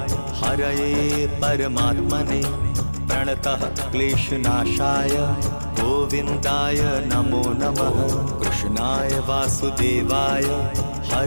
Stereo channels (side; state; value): both; inverted; correlation -1.00